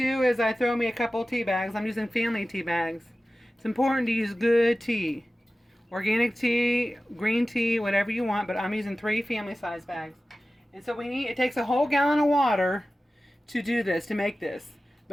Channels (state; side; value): normal; both; correlation 0.96